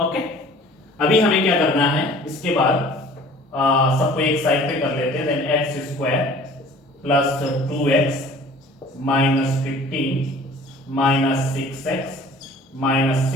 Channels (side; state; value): both; normal; correlation 0.48